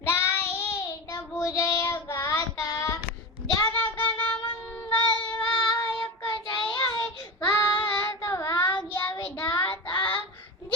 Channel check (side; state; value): both; normal; correlation 0.23